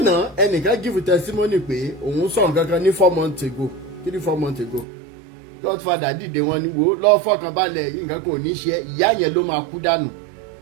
ẹnìkan give testimony pé òun sọ nǹkan kan ní 4 months ago. Godfather dìde wọn ni wo lọ́ọ́ fọkàn balẹ̀, nǹkan kò ní ṣe, ìyá yẹn ló máa kú dànù.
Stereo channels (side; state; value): left; drops out; at 4.9 s